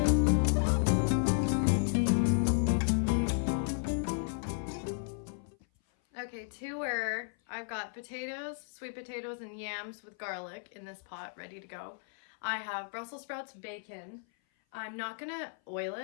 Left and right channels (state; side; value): silent; right; 55 dB below the other